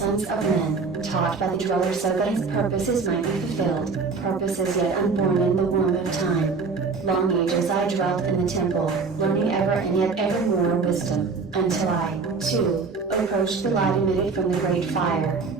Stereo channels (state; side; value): quieter; left; 4.6 dB